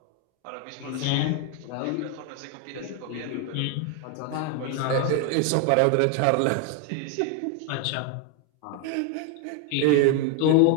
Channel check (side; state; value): both; different; correlation 0.01